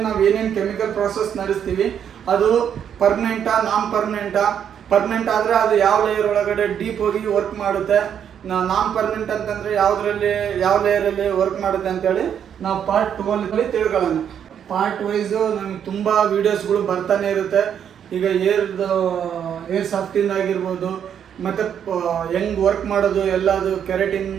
ನಾವು ಏನೇನು ಕೆಮಿಕಲ್ ಪ್ರಾಸೆಸ್ ನಡೆಸ್ತೀವಿ ಅದು ಪರ್ಮನೆಂಟಾ, ನಾನ್ ಪರ್ಮನೆಂಟ್ ಆದ್ರೆ ಅದು ಯಾವ ಲೇಯರ್ ಒಳಗಡೆ ಡೀಪ್ ಹೋಗಿ ವರ್ಕ್ ಮಾಡುತ್ತೆ, ನಾನ್ ಪರ್ಮನೆಂಟ್ ಅಂತಂದ್ರೆ ಯಾವ ಲೇಯರ್ ಅಲ್ಲಿ ವರ್ಕ್ ಮಾಡುತ್ತೆ ಅಂತೇಳಿ ನಾವು ಪಾರ್ಟ್ 2 ಅಲ್ಲಿ ತಿಳ್ಕೊಳ್ಳೋಣ. ಪಾರ್ಟ್ ವೈಸ್ ನಮ್ಗೆ ತುಂಬಾ ವಿಡಿಯೋಸ್ಗಳು ಬರ್ತಾನೆ ಇರುತ್ತೆ. ಈಗ ಏರ್ ಸಾಫ್ಟಿಂಗ್ ಆಗಿರ್ಬೋದು, ಮತ್ತೆ ಹೆಂಗ್ ವರ್ಕ್ ಮಾಡೋದು ಎಲ್ಲದು, ಕೆರಾಟಿನ್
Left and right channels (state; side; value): quieter; left; 8.7 dB